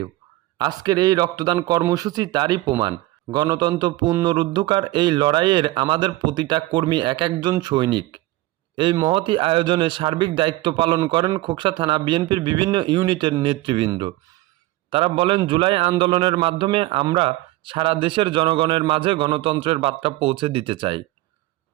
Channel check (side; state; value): left; quieter; 18.5 dB